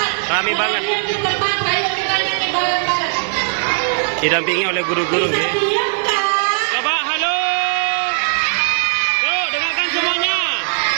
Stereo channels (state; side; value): silent; left; digital silence